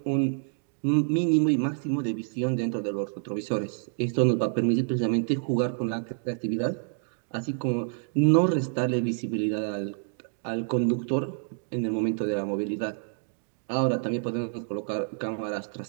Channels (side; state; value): left; silent; digital silence